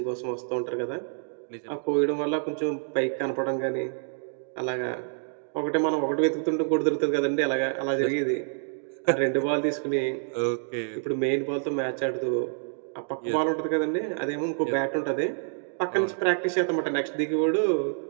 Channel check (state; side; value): silent; left; digital silence